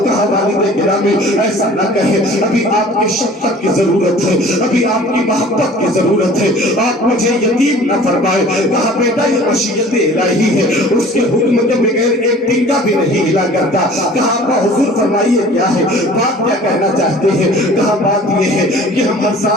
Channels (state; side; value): normal; both; correlation 0.47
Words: کہا والد گرامی ایسا نہ کہے، ابھی آپ کی شفقت کی ضرورت ہے، ابھی آپ کی محبت کی ضرورت ہے، آپ مجھے یتیم نہ فرمائے۔ کہا بیٹا یہ مشیت الہی ہے، اس کے حکم کے بغیر ایک ٹنکا بھی نہیں ہلا کرتا۔ کہا ابا حضور فرمائیے کیا ہے، بات کیا کہنا چاہتے ہیں؟ کہا بات یہ ہے کہ ہم ہر